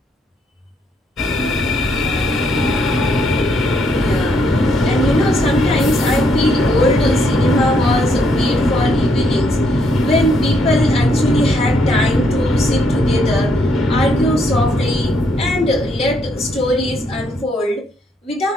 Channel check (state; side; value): normal; both; correlation 0.73